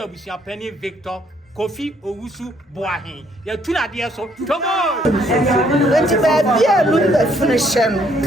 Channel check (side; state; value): both; normal; correlation 0.67